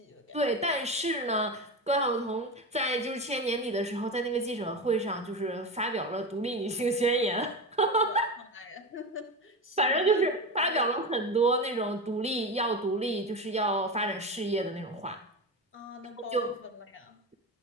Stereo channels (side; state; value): both; normal; correlation 0.22